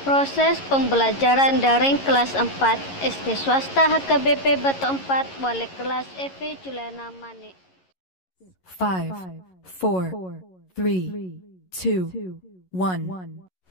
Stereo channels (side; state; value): right; late; 11 ms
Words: Proses pembelajaran daring kelas 4 SD swasta HKBP Batu 4 wali kelas Evi Juliana Manik. 5, 4, 3, 2, 1,